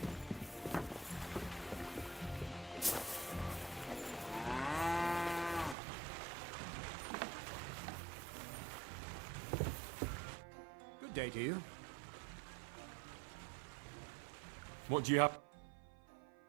Good day to you. What do you have?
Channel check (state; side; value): drops out; left; at 5.8 s